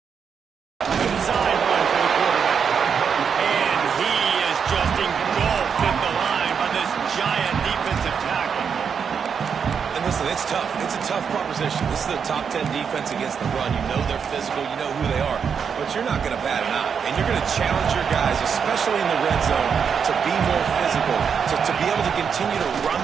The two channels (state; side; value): quieter; left; 6.7 dB